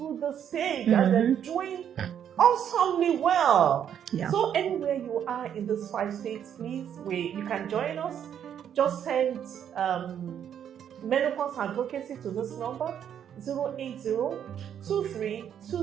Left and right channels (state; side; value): quieter; left; 9.1 dB